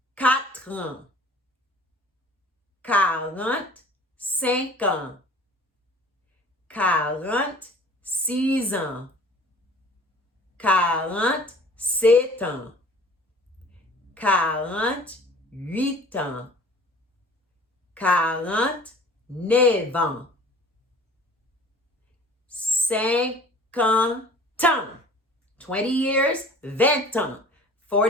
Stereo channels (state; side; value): normal; both; correlation 0.47